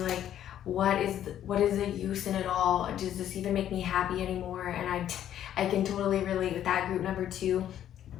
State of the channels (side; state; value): right; quieter; 11.0 dB